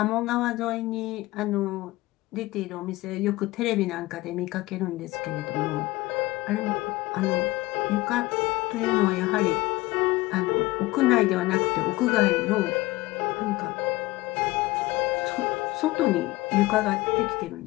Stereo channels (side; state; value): right; quieter; 19.6 dB